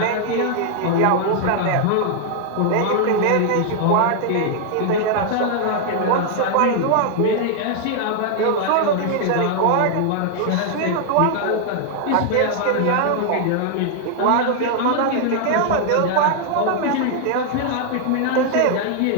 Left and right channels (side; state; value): both; different; correlation 0.00